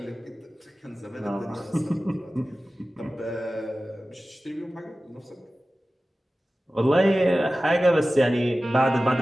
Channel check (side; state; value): both; normal; correlation 0.96